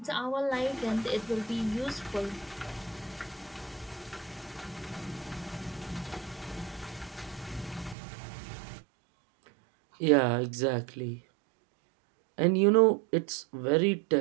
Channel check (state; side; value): drops out; left; at 8.0 s